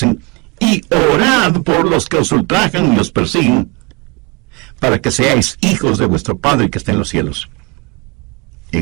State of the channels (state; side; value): quieter; left; 27.0 dB